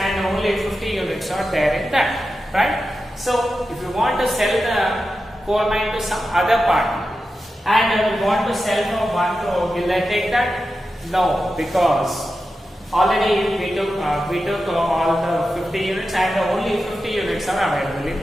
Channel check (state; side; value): normal; both; correlation 0.91